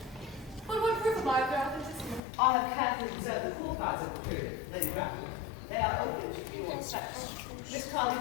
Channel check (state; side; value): drops out; right; at 2.2 s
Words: But what proof of their authenticity? I have carefully preserved the core cards of the period, Lady Grafton. They are open to view on sex. Miss